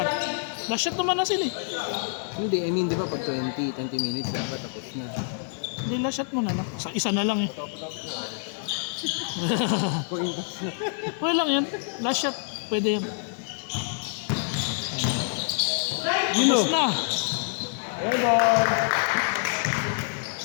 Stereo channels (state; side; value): silent; right; digital silence